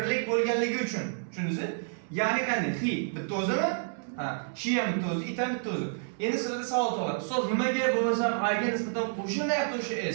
bo'lganligi uchun. Tushundingizmi? Ya'ni qanday? He bitta o'zimi? Ha, she ham bitta o'zi, it ham bitta o'zi. Endi sizlarga savol tug'iladi. Ustoz, nimaga bo'lmasam I ga nisbatan qo'shilmayapti o'sha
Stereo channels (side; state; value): left; silent; 58 dB below the other